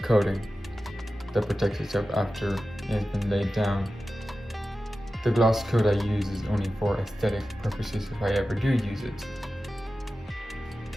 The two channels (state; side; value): normal; both; correlation 0.94